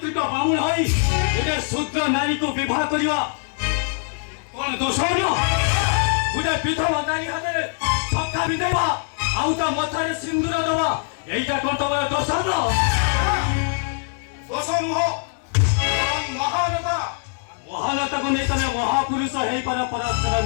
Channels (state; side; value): silent; right; 60 dB below the other